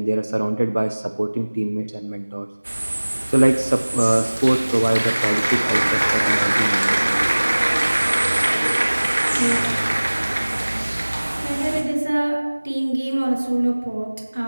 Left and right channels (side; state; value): both; inverted; correlation -1.00